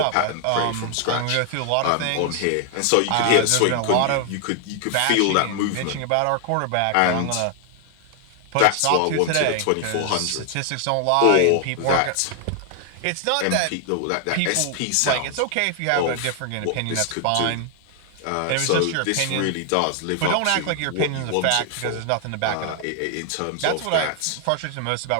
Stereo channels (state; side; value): different; both; correlation 0.00